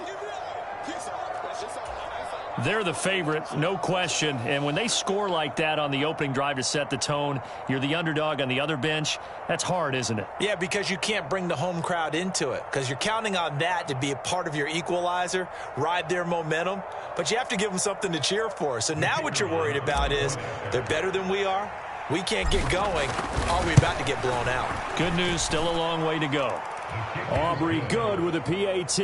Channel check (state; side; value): identical; both; correlation 1.00